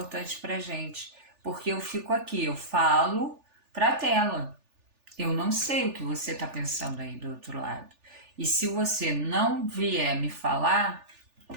pra gente, porque eu fico aqui, eu falo pra tela. Eu não sei o que você está pensando aí do outro lado. E se você não vier me falar,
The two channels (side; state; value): left; late; 3.4 ms